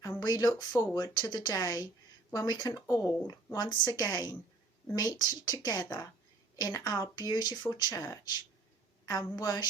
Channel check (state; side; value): quieter; left; 3.3 dB